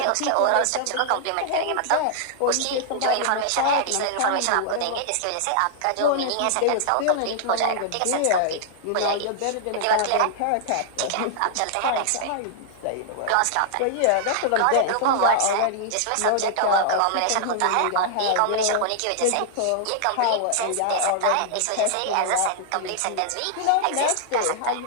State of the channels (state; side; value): different; both; correlation -0.01